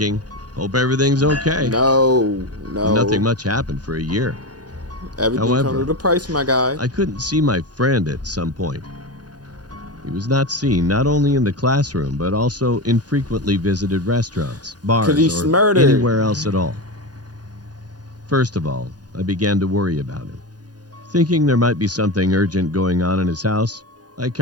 hope everything's okay. No. Nothing much happened for a year. Everything comes However, with a price, my guy. I couldn't see my friend at some point. He was not seen not only in the classroom, but also in frequently visited restaurants, Cause he's bars, or murdered. anywhere else at all. First of all, I began to worry about him. Thinking there might be something urgent going on in his house, I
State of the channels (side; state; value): left; late; 0.69 ms